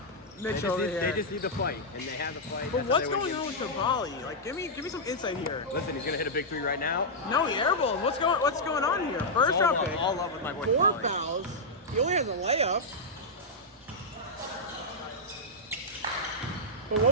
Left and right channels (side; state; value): both; normal; correlation -0.06